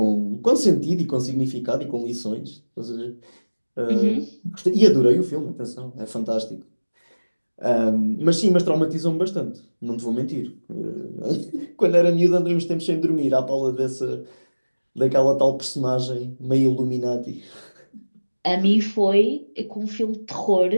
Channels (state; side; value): inverted; both; correlation -1.00